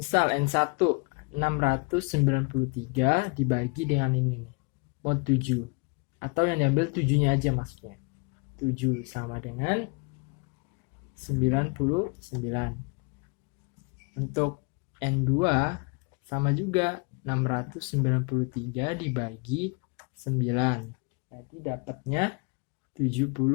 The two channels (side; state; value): right; quieter; 33.5 dB